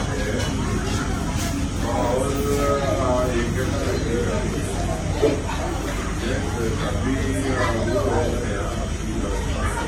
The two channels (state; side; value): identical; both; correlation 1.00